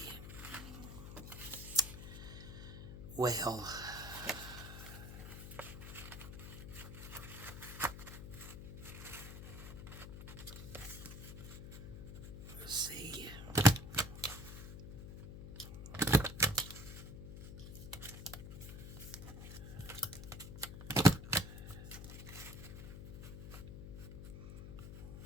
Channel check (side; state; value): left; noise; hum, 10 dB below the sound